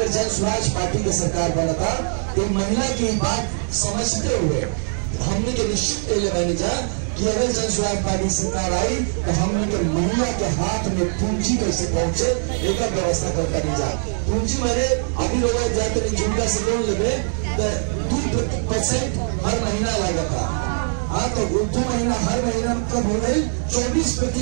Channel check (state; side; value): silent; left; digital silence